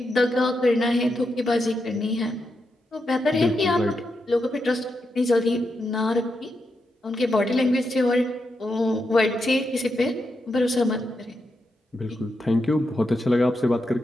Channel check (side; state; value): both; normal; correlation 0.85